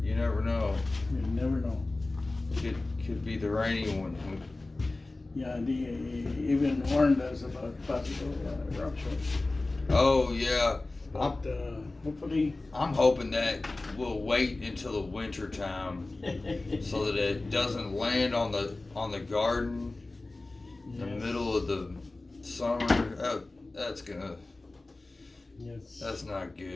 you never know. You never know. Could be the rainy one. Yeah, they even warned us about possible eruption. Oh yeah, But hopefully, I'm hoping that we'll wait until the winter time so that it doesn't land on the garden in the middle of the summer. That's not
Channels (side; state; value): right; quieter; 3.1 dB